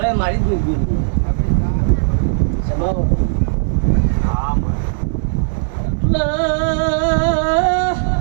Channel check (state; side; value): silent; left; digital silence